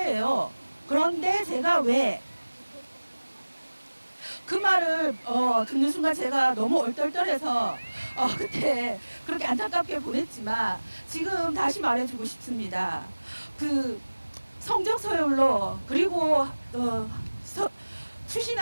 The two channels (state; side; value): inverted; both; correlation -1.00